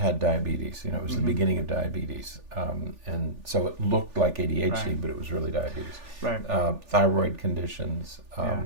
diabetes. It was the beginning of diabetes, and so it looked like ADHD, but it was really diabetes. Thyroid conditions.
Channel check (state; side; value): late; left; 3.4 ms